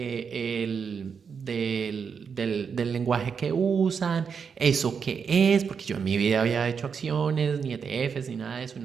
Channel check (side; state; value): left; quieter; 6.3 dB